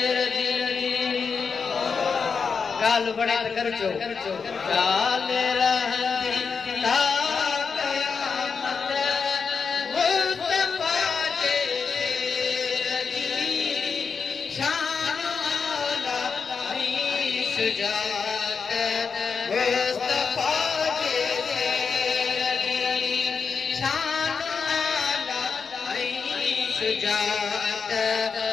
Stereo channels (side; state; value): right; quieter; 5.5 dB